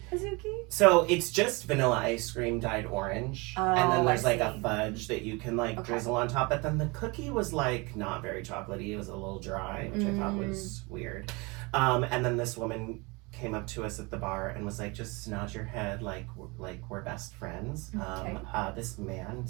Bazooki? So it's just vanilla ice cream dyed orange. Oh, and then there's like a fudge that you can drizzle on top. But then the cookie was like not very chocolatey. It was a little dry, which I thought was weird. And then this woman came up to us at the bar and was like, just nod your head like we're best friends. Okay. This man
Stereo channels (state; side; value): quieter; left; 26.9 dB